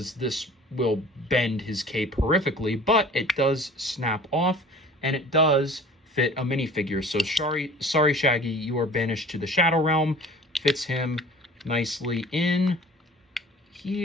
this will bend his cape horrifically, but it does snap off, and it does fit a minifigure. So sorry, Shaggy, you are banished to the Shadow Realm. Fits him nicely in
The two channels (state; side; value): normal; both; correlation 0.45